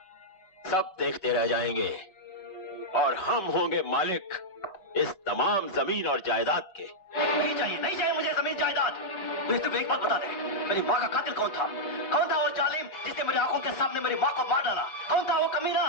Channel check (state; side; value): late; right; 5.2 ms